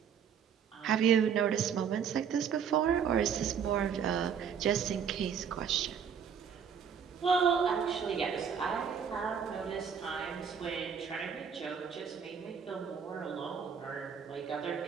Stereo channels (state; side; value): quieter; left; 7.3 dB